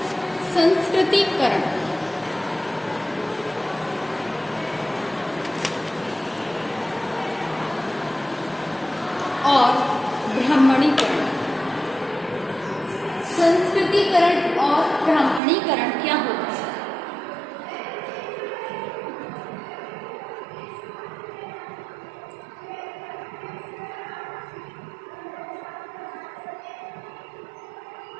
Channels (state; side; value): drops out; left; at 15.4 s